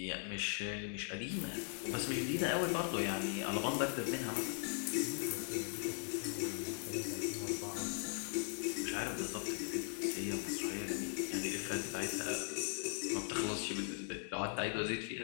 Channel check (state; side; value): silent; right; 51 dB below the other